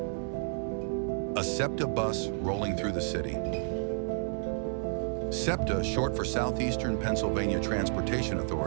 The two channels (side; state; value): left; silent; digital silence